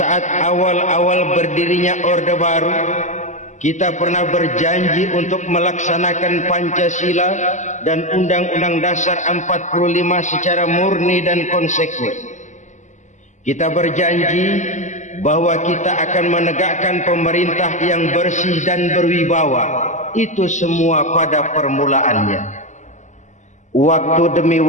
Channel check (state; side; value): late; right; 0.35 ms